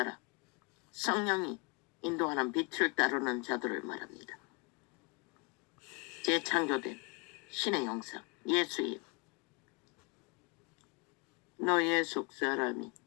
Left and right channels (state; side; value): quieter; right; 32.6 dB